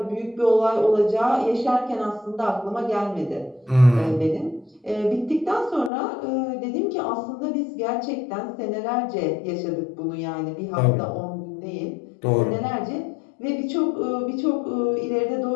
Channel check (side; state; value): right; drops out; at 5.9 s